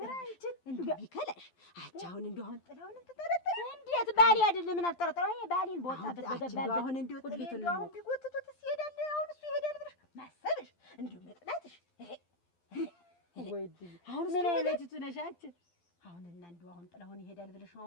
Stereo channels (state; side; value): late; right; 12 ms